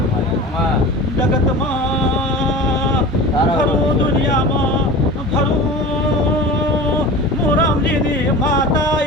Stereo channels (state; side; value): normal; both; correlation 0.35